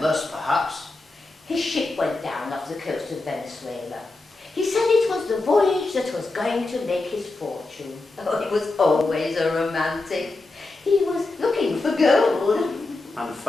perhaps. His ship went down off the coast of Venezuela. He said it was the voyage that was going to make his fortune. Oh, he was always a romantic. He was looking for gold. And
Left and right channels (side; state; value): right; quieter; 3.3 dB